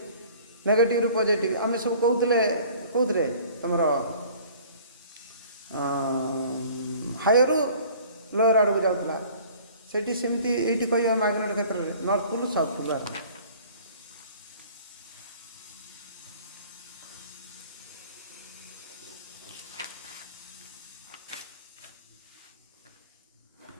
negative ରୁ positive ଆମେ ସବୁ କହୁଥିଲେ କୋଉଥିରେ ତମର ହାୟରୁ ଲୋୟର ଆଡ଼କୁ ଯାଉଥିଲା ସେଠି ସେମିତି ଏଇଠି କହିବା ମ୍ୟାଗ୍ନେଟ କ୍ଷେତ୍ରରେ ନର୍ଥ ପୋଲ ସାଉଥ ପୋଲ ବାହାରେ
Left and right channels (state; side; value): inverted; both; correlation -0.49